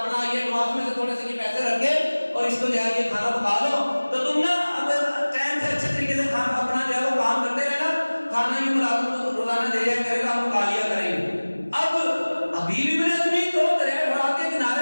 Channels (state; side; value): inverted; both; correlation -1.00